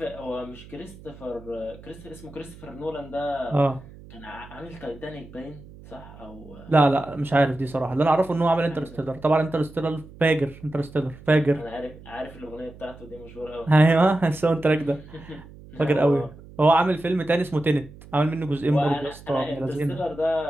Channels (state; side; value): noise; right; hum, 19 dB below the sound